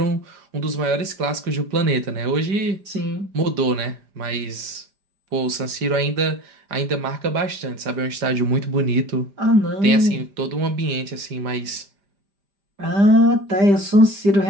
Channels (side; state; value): left; late; 5.0 ms